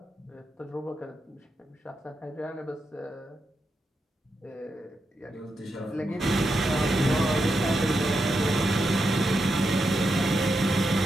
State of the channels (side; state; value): both; normal; correlation 0.85